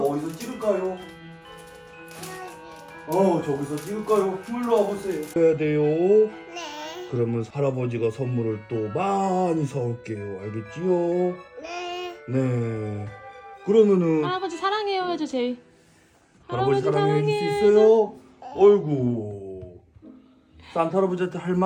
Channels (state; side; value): identical; both; correlation 1.00